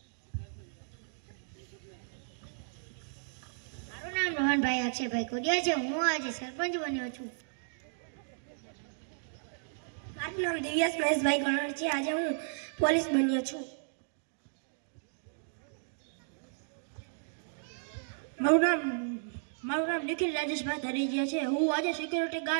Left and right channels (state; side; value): silent; left; digital silence